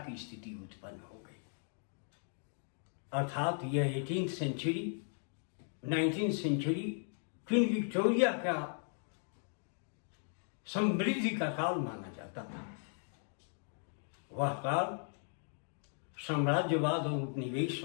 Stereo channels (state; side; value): silent; right; 53 dB below the other